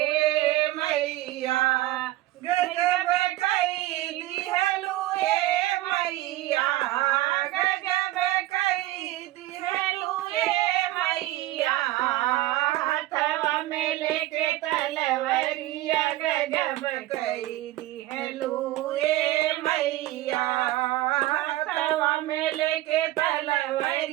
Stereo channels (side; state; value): left; quieter; 16.5 dB